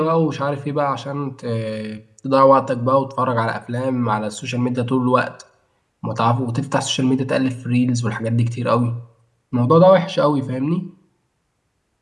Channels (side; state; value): both; identical; correlation 1.00